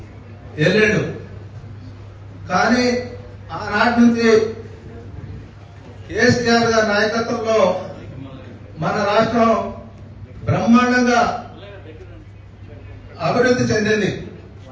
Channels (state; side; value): identical; both; correlation 1.00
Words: వెళ్ళాడు. కానీ ఆనాటి నుంచి కేసీఆర్ గారి నాయకత్వంలో మన రాష్ట్రం బ్రహ్మాండంగా అభివృద్ధి చెందింది.